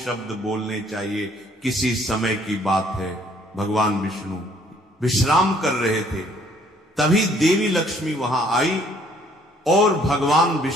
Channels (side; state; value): both; normal; correlation 0.62